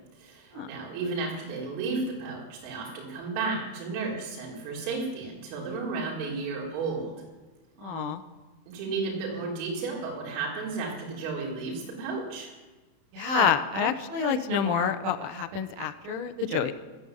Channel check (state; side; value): late; left; 31 ms